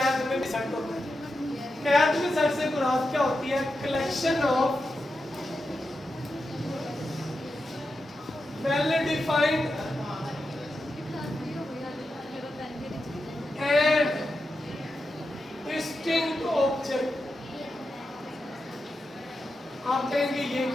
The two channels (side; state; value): both; normal; correlation 0.89